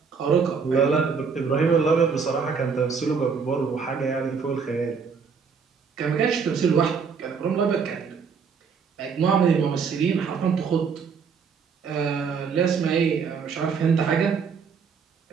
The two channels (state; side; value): quieter; left; 5.8 dB